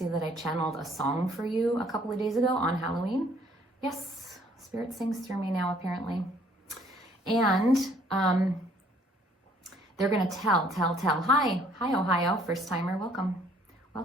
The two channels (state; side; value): normal; both; correlation 0.61